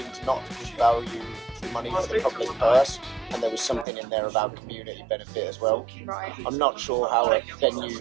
not to be value for money for the public purse, and there was something in there about community benefit as well. Right. I'm not sure how a venue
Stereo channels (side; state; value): left; drops out; at 3.9 s